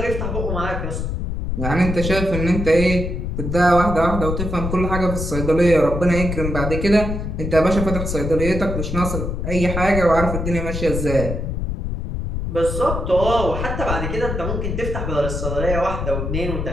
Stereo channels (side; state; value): left; noise; rumble, 3 dB below the sound